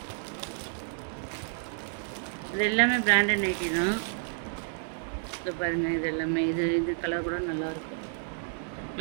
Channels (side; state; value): left; silent; 58 dB below the other